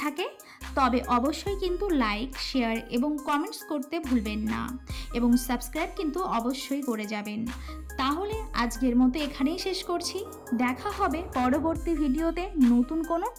থাকে তবে অবশ্যই কিন্তু লাইক, শেয়ার এবং কমেন্টস করতে ভুলবেন না এবং সাবস্ক্রাইব কিন্তু অবশ্যই করে যাবেন। তাহলে আজকের মতো এখানেই শেষ করছি, দেখা হবে পরবর্তী ভিডিওতে নতুন কোনো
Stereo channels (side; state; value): both; identical; correlation 1.00